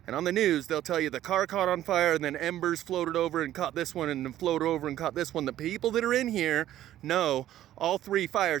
And on the news they'll tell you the car caught on fire and then embers floated over and caught this one and then floated over and caught this one. The people that are in here know all three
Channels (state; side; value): quieter; left; 12.8 dB